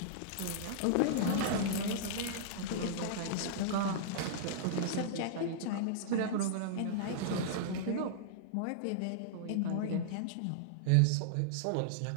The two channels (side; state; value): both; different; correlation -0.02